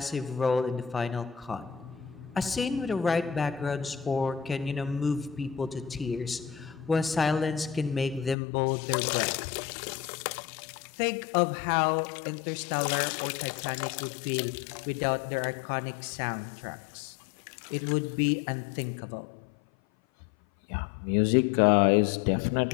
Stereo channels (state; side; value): drops out; right; at 8.3 s